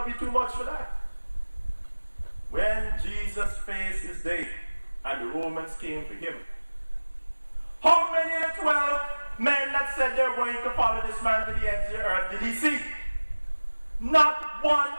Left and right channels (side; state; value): both; inverted; correlation -1.00